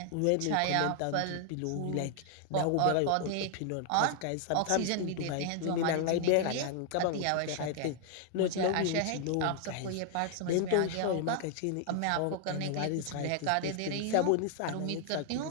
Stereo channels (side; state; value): both; different; correlation 0.00